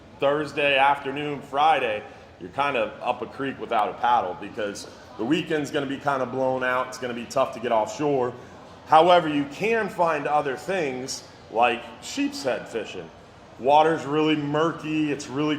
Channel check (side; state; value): both; identical; correlation 1.00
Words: Thursday afternoon, Friday, you're kind of up a creek without a paddle because the weekend's going to be kind of blown out. It's going to be tough to get offshore. However, you can find other things like sheep's head fishing. Water's really murky, it's